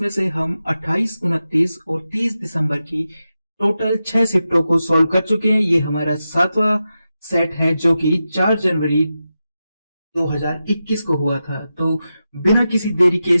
से हम 28, 29 और 30 दिसंबर की टोटल 6 शिफ्टों को सॉल्व कर चुके हैं। ये हमारा 7वां सेट है जो कि 4 जनवरी 2021 को हुआ था। तो बिना किसी देरी के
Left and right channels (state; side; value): inverted; both; correlation -0.91